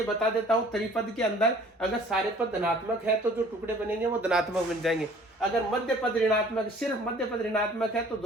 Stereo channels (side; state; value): both; normal; correlation 0.52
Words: बता देता हूँ। त्रिपद के अंदर अगर सारे पद धनात्मक है तो जो टुकड़े बनेंगे वो धनात्मक बन जाएंगे। अगर मध्य पद ऋणात्मक, सिर्फ मध्य पद ऋणात्मक है तो